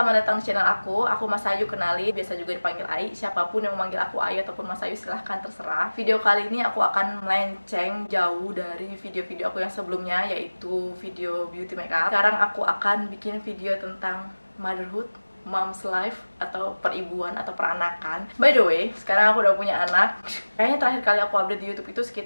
datang di channel aku. Aku Mas Ayu, kenali, biasa juga dipanggil Ai. Siapapun yang memanggil aku Ayu ataupun Mas Ayu silahkan terserah. Video kali ini aku akan melenceng jauh dari video-video aku yang sebelumnya, yaitu video beauty makeup. Sekarang aku akan bikin video tentang motherhood, mom's life, atau peribuan atau peranakan. By the way, sekarang aku udah punya anak. Kayaknya terakhir kali aku update di YouTube itu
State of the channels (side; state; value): both; inverted; correlation -1.00